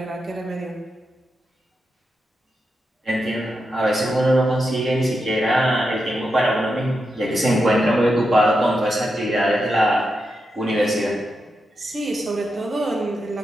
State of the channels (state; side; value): normal; both; correlation 0.87